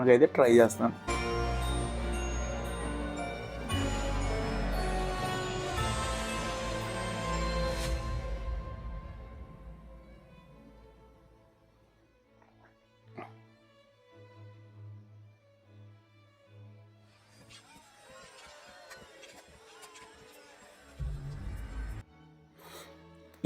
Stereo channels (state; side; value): identical; both; correlation 1.00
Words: అయితే ట్రై చేస్తాను.